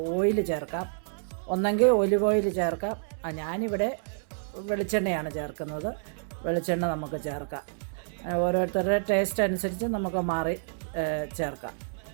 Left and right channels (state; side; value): silent; left; 59 dB below the other